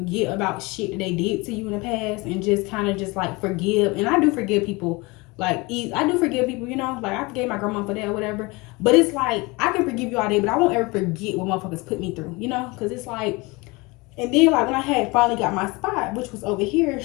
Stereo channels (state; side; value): quieter; right; 25.1 dB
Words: about shit that they did to you in the past. And just kind of just like forgive. And I do forgive people. Like I do forgive people, you know. Like I forgave my grandma for that or whatever. But it's like I can forgive you all day. But I won't ever forget what motherfuckers put me through. You know. Because it's like. And then like when I had finally got my spot, which was over here,